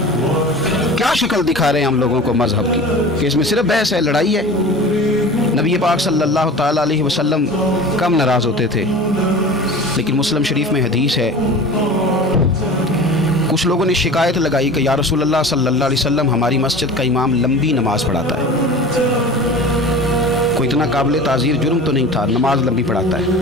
क्या शक्ल दिखा रहे हैं हम लोगों को मजहब की कि इसमें सिर्फ बहस है, लड़ाई है। नबी पाक सल्लल्लाहु ताला अलैहि वसल्लम कम नाराज़ होते थे, लेकिन मुस्लिम शरीफ में हदीस है, कुछ लोगों ने शिकायत लगाई कि या रसूलल्लाह सल्लल्लाहु अलैहि वसल्लम हमारी मस्जिद का इमाम लंबी नमाज़ पढ़ाता है। कोई इतना काबिल ताज़ीर जुर्म तो नहीं था, नमाज लंबी पढ़ाता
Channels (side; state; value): both; normal; correlation 0.37